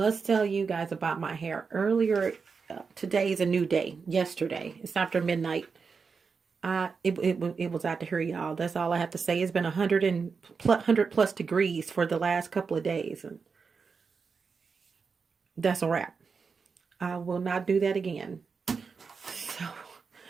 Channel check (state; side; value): quieter; left; 5.2 dB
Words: tell you guys about my hair. Earlier, today is a new day. Yesterday, it's after midnight. It was out to here, y'all. That's all I have to say. It's been 100 plus degrees for the last couple of days, and that's a wrap. I will not do that again.